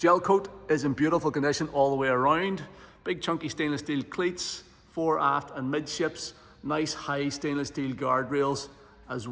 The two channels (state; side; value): identical; both; correlation 1.00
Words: coat is in beautiful condition all the way around. Big chunky stainless steel cleats, fore, aft and midships. Nice high stainless steel guardrails as